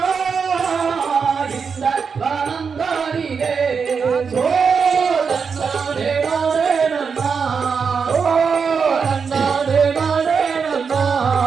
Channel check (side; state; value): left; quieter; 5.8 dB